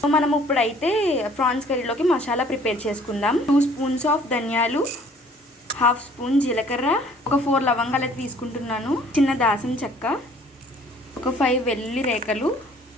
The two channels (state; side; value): normal; both; correlation 0.55